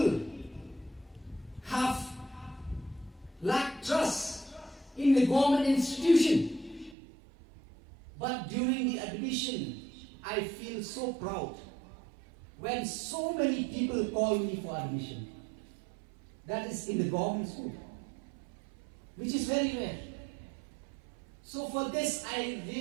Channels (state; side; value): drops out; left; at 7.0 s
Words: have lacked trust in the government institution. But during the admission, I feel so proud when so many people call me for admission. That is in the government school, which is very rare. So for this, I